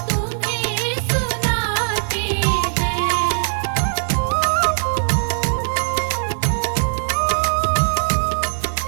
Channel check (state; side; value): silent; left; 62 dB below the other